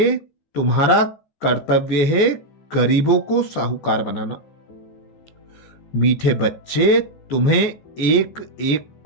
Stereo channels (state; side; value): late; right; 14 ms